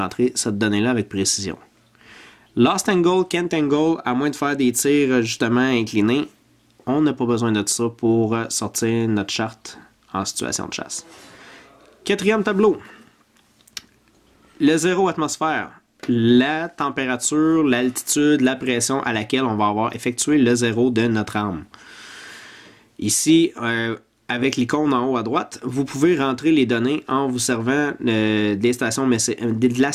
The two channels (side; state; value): both; identical; correlation 1.00